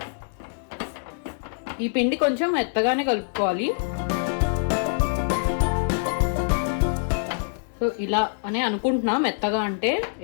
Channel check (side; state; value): right; silent; digital silence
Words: ఈ పిండి కొంచెం మెత్తగానే కలుపుకోవాలి. సో ఇలా అని అనుకుంటున్నా, మెత్తగా అంటే